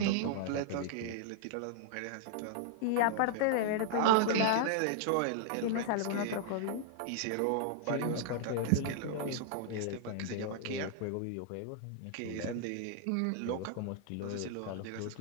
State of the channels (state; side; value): different; both; correlation -0.01